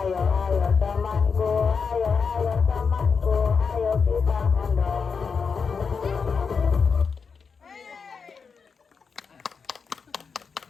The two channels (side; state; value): right; quieter; 5.5 dB